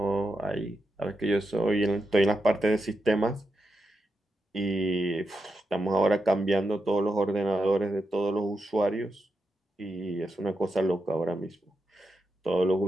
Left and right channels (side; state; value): both; normal; correlation 0.86